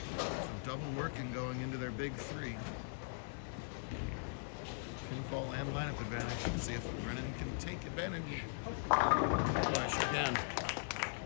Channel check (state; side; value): silent; right; digital silence